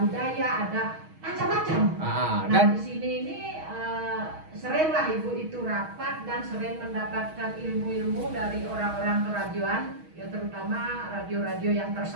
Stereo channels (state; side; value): late; left; 6.3 ms